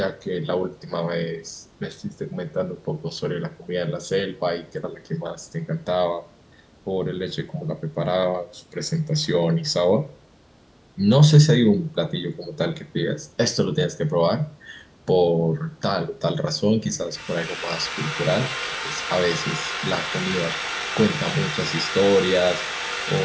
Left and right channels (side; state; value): both; identical; correlation 1.00